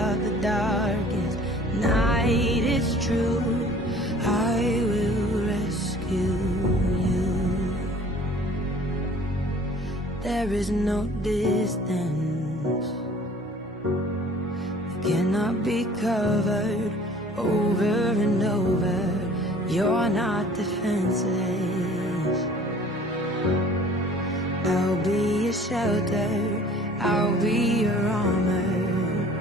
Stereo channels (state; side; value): normal; both; correlation 0.50